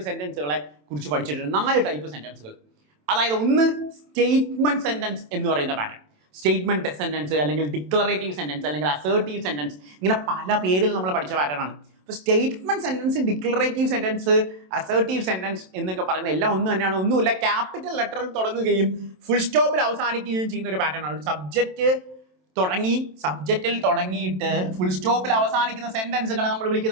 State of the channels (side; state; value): left; late; 27 ms